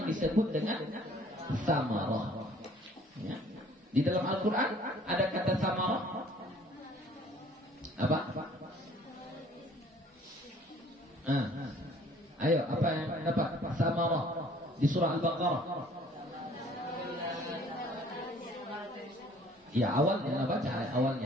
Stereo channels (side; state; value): both; normal; correlation 0.55